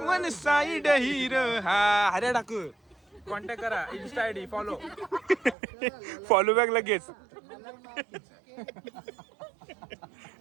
वन साइड हिरो. हा हऱ्या टाकू. कॉन्टॅक्ट करा इन्स्टा आयडी फॉलो बॅक लगेच.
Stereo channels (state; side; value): drops out; left; at 5.6 s